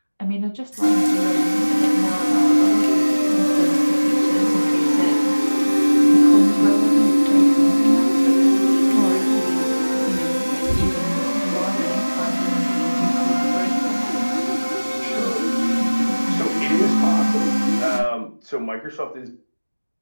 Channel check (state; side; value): inverted; both; correlation -1.00